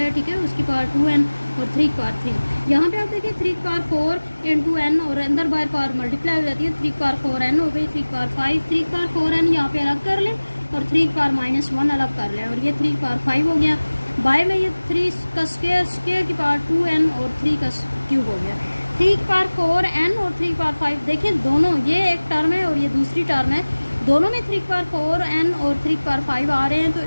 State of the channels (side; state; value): both; inverted; correlation -1.00